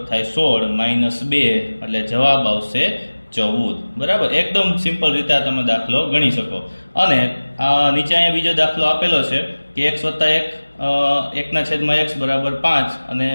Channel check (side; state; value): both; inverted; correlation -1.00